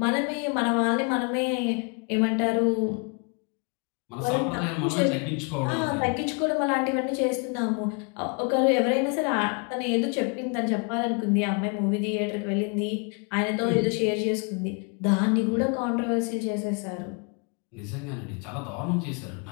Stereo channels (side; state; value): right; quieter; 35.3 dB